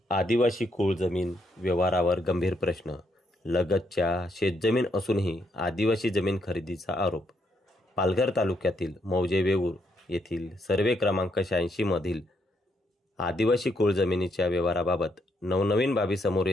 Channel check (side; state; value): both; normal; correlation 0.76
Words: आदिवासी कुळ जमीन व्यवहारावर गंभीर प्रश्न. लगतच्या शेतजमीन असूनही आदिवासी जमीन खरेदीचा आरोप. पालघर तालुक्यातील मौजे वेऊर येथील सर्वे क्रमांक 86 मधील आदिवासी कुळ जमिनीच्या व्यवहाराबाबत नवनवीन बाबी समोर